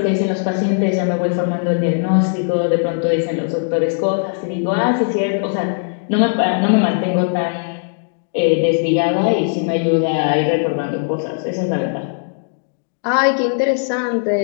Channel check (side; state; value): right; silent; digital silence